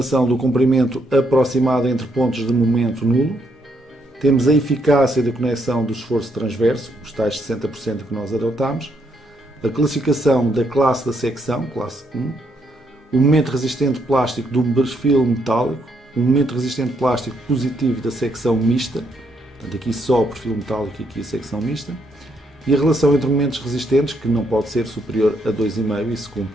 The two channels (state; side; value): normal; both; correlation 0.75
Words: do comprimento aproximado entre pontos de momento nulo. Temos a eficácia da conexão do esforço transverso, os tais 60% que nós adotámos. A classificação da classe da secção, classe 1. O momento resistente plástico do perfil metálico. O momento resistente plástico positivo da secção mista. Portanto, aqui só o perfil metálico e aqui a secção mista. E a relação entre momentos resistentes, que não pode ser superior a 2,5 e se cumpre